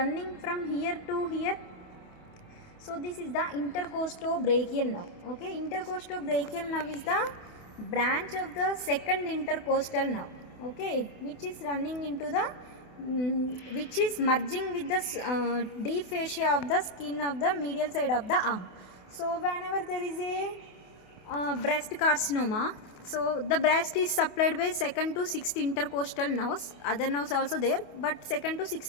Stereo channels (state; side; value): late; right; 28 ms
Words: from here to here? So this is the intercostobrachial nerve. Okay, intercostobrachial nerve is the branch of the second intercostal nerve. Okay, which is running into the, which is merging with the deep fascia of the skin of the medial side of the arm. So whenever there is a breast carcinoma, so the breast is supplied by second to sixth intercostal nerves. Other nerves also there, but second to